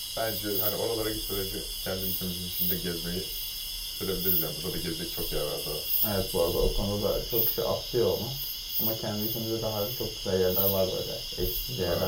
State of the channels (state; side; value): identical; both; correlation 1.00